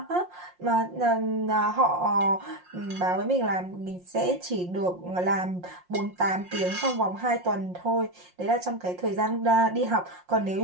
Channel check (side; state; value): left; late; 5.6 ms